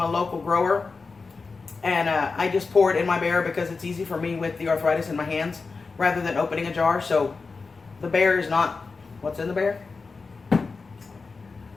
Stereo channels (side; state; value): right; quieter; 4.4 dB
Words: local grower, and I just pour it in my Bear because it's easy for me with the arthritis in my hands rather than opening a jar. So the Bear is not what's in the Bear.